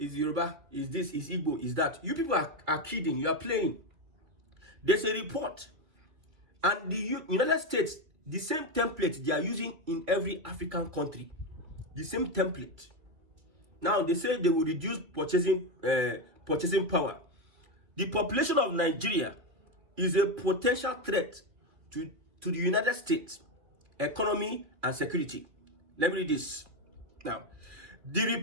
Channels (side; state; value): left; late; 2.6 ms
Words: this, is Igbo, is that, you people are kidding. You are playing. There's a report, and the United States, the same template they are using in every African country. The same template. Now they say they will reduce purchasing power. The population of Nigeria is a potential threat to the United States economy and security. Let me read this. Now, the